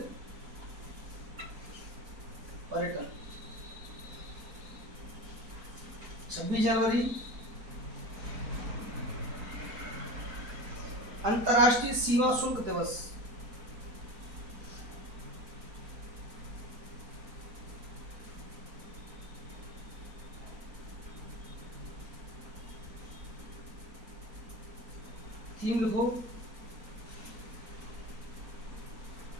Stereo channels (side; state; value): left; late; 4.7 ms